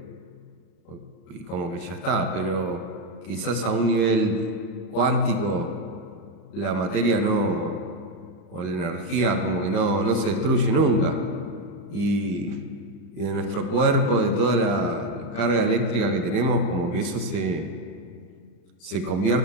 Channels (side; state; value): right; late; 35 ms